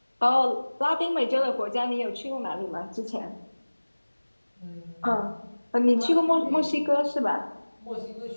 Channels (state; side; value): inverted; both; correlation -1.00